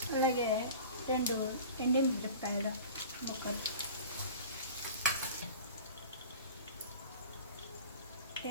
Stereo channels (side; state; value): both; inverted; correlation -0.38